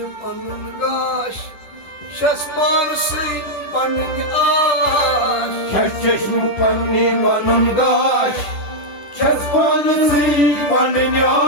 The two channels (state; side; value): late; right; 10 ms